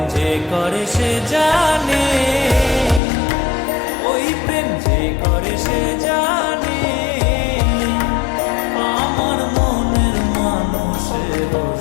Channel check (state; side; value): drops out; right; at 3.0 s